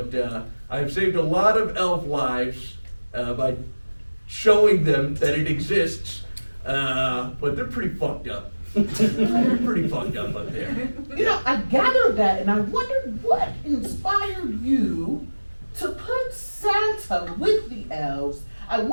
I've saved a lot of elf lives by showing them that it exists. But they're pretty fucked up. They're pretty fucked up there. You know, I gathered that, and I wondered what inspired you to put Santa with the elves. I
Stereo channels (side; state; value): both; inverted; correlation -1.00